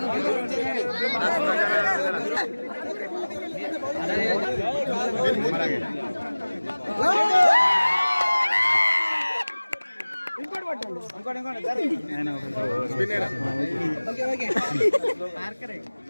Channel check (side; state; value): both; inverted; correlation -1.00